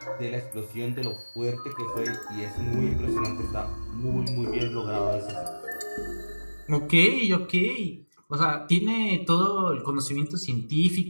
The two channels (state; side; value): inverted; both; correlation -1.00